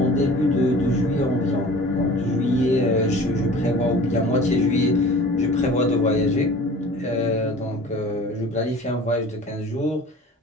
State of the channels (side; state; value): both; normal; correlation 0.42